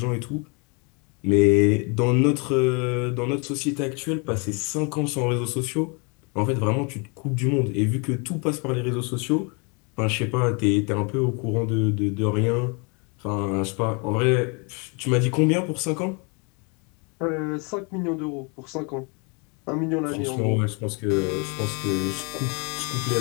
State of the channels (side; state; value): right; quieter; 32.9 dB